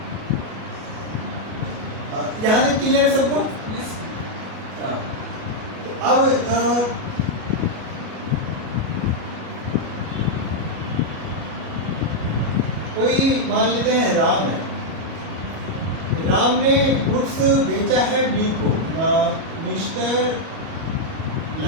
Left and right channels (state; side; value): late; left; 37 ms